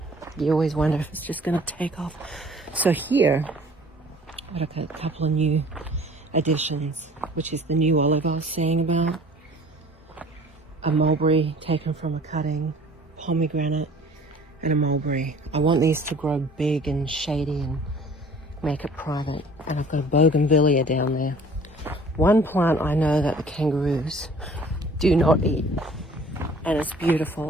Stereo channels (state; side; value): normal; both; correlation 0.51